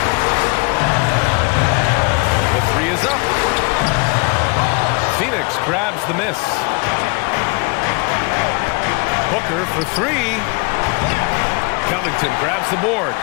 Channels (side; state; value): right; quieter; 29.3 dB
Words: The 3 is up. Phoenix grabs the miss. Booker for 3. Covington grabs the board.